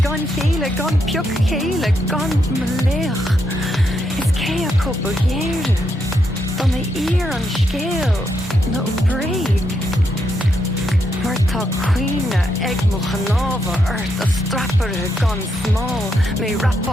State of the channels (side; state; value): both; normal; correlation 0.80